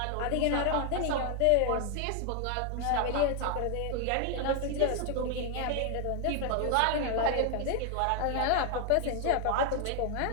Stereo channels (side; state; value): both; different; correlation 0.00